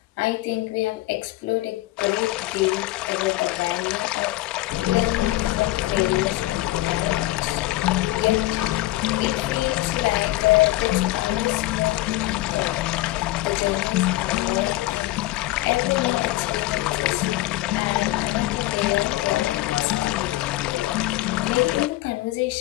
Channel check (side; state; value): right; quieter; 17.5 dB